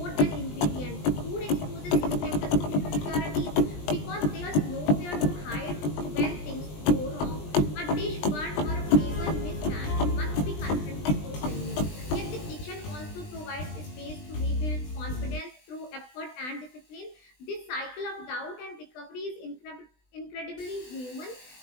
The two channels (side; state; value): right; late; 20 ms